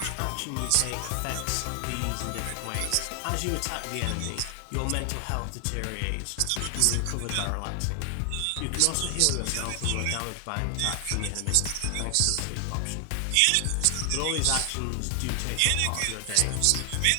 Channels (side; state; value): both; different; correlation 0.00